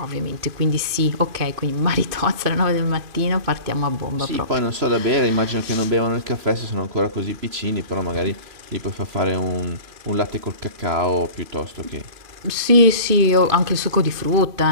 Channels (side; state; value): left; late; 2.6 ms